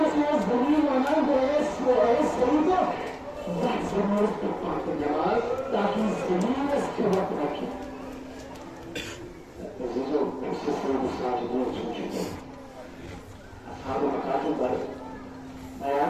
zırın anan ve es Seyyid-i Zah zırın tutmak cemal Taki zırın es kıvat rakip عزیزوں اس سے سب ساجدین سن چکے اصحاب مکاتب پر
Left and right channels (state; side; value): identical; both; correlation 1.00